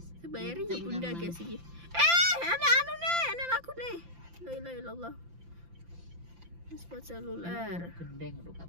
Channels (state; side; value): late; left; 5.8 ms